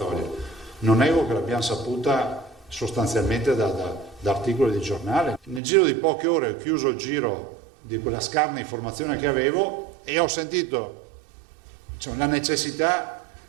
Non nego che l'abbiamo saputa sostanzialmente da articoli di giornale. Nel giro di poche ore ho chiuso il giro di quella scarna informazione che avevo e ho sentito la necessità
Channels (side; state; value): left; drops out; at 5.6 s